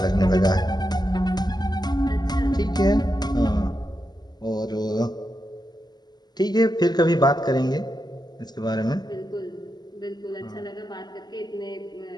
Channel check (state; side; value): late; right; 0.20 ms